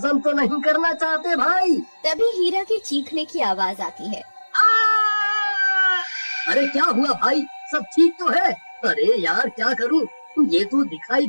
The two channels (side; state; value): both; inverted; correlation -1.00